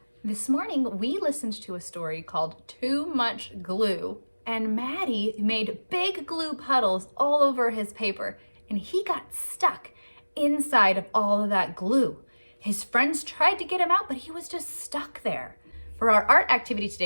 This morning, we listened to a story called Too Much Glue, and Maddie made big glue puddles all over his paper, and he got stuck inside of all of that glue. His friends tried to get him out, but he was just stuck there. For our art activity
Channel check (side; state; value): both; inverted; correlation -1.00